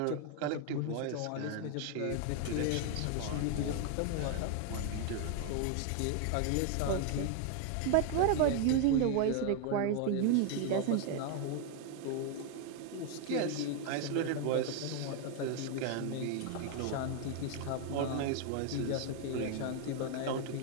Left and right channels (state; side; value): different; both; correlation 0.00